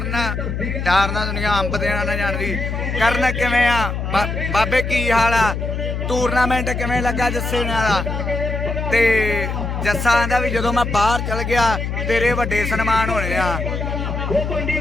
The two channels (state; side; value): noise; left; hum, 3 dB below the sound